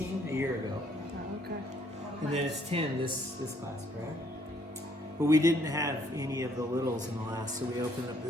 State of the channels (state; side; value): normal; both; correlation 0.66